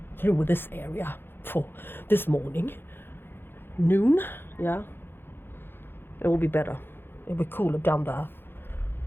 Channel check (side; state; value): right; late; 0.10 ms